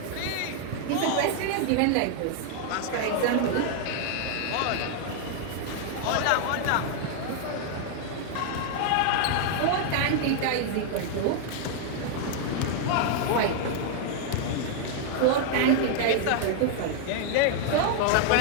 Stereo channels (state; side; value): different; both; correlation 0.00